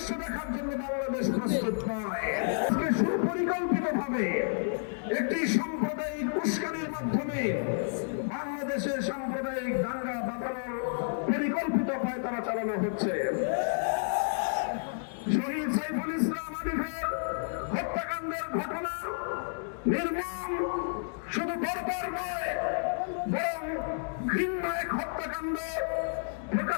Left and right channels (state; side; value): silent; right; digital silence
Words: দেখার জন্য বাংলাদেশ প্রস্তুত নয়। সুপরিকল্পিতভাবে একটি সাম্প্রদায়িক উস্কানির মাধ্যমে বাংলাদেশে সাম্প্রদায়িক দাঙ্গা বাঁধানোর পরিকল্পিত পায়তারা চালানো হচ্ছে। শহীদ সাইফুল ইসলাম আলিফের হত্যাকাণ্ডের ঘটনা নির্মম, শুধু বর্বর নয় বরং ঘৃণ্য এক হত্যাকাণ্ড